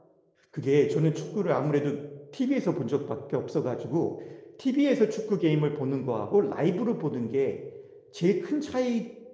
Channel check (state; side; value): identical; both; correlation 1.00